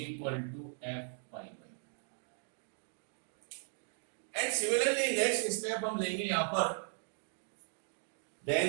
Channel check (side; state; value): left; silent; 53 dB below the other